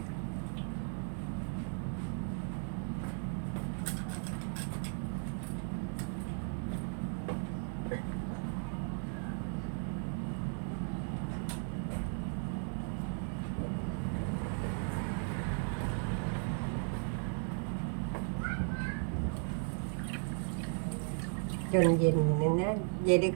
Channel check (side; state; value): left; silent; 54 dB below the other